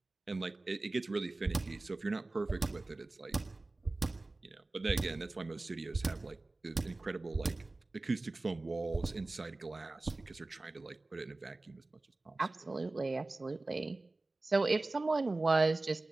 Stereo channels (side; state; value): left; quieter; 3.1 dB